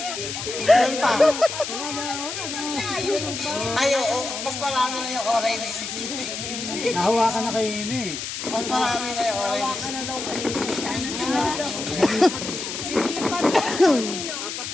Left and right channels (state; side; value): noise; left; hiss, 6 dB below the sound